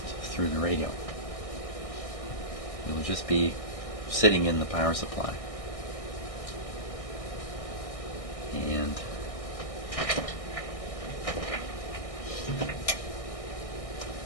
through the radio. It will just be sitting in the power supply. And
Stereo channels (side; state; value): right; late; 1.6 ms